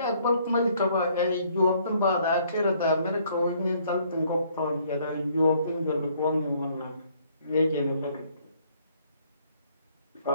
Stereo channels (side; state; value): both; inverted; correlation -0.64